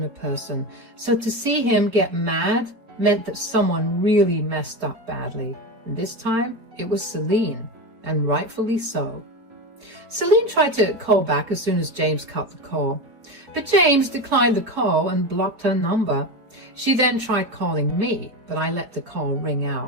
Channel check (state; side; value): late; left; 4.2 ms